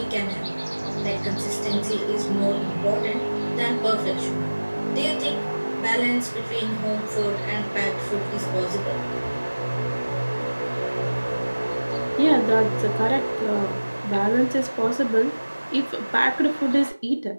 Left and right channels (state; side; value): inverted; both; correlation -1.00